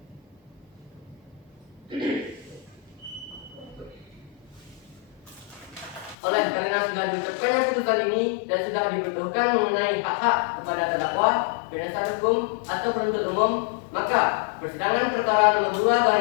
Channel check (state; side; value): drops out; right; at 6.2 s